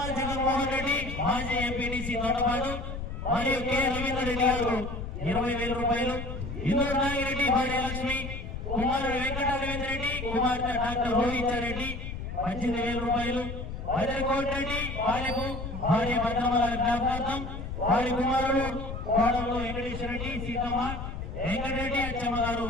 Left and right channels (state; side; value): noise; left; rumble, 7 dB below the sound